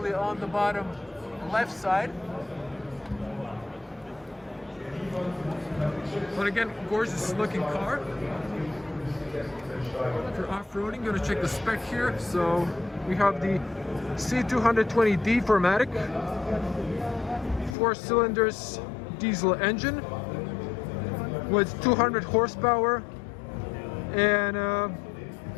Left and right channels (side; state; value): right; drops out; at 17.8 s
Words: on the bottom left side. But again, gorgeous looking car for off-roading. Gonna check the spec here. So we have the C220D 4Matic, 4 cylinders diesel engine with 200 horsepower and